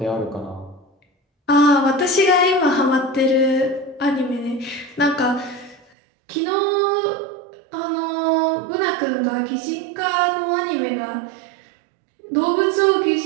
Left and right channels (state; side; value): drops out; left; at 5.9 s